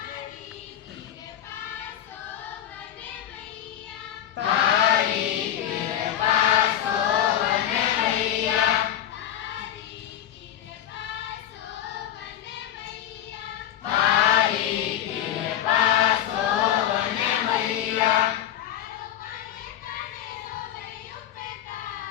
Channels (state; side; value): quieter; right; 11.1 dB